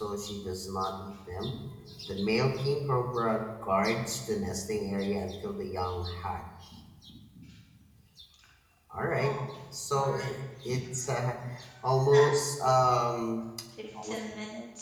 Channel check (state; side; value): identical; both; correlation 1.00